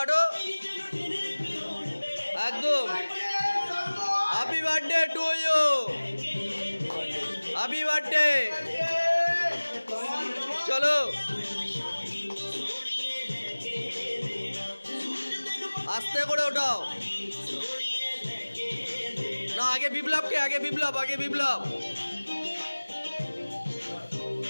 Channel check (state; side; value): inverted; both; correlation -1.00